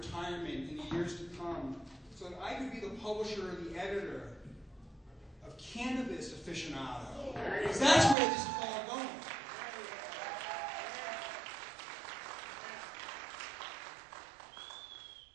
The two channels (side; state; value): left; drops out; at 8.2 s